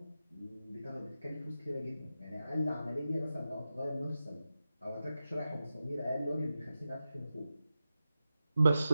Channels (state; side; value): inverted; both; correlation -0.91